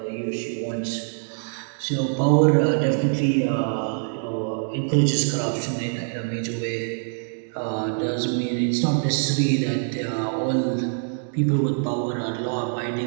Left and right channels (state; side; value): silent; left; digital silence